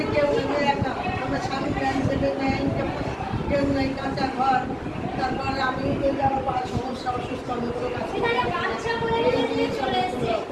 কেউ নেই, একা আমরা স্বামী প্যান্ট দেবে নেই, কেউ নেই, কাঁচা ঘর। তারপরে আমি আমার বড় সমস্যা, অসুস্থ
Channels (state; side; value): identical; both; correlation 1.00